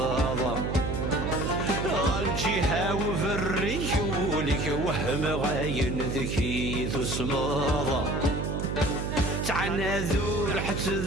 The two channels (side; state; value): right; noise; hum, 2 dB below the sound